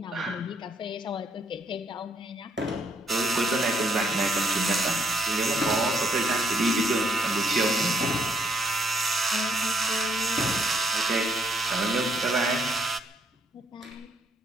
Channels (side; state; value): both; normal; correlation 0.71